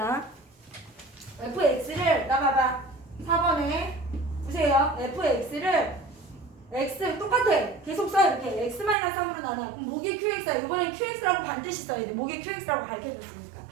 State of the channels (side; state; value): left; drops out; at 9.0 s